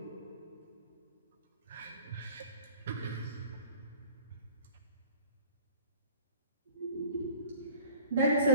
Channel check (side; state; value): both; inverted; correlation -0.43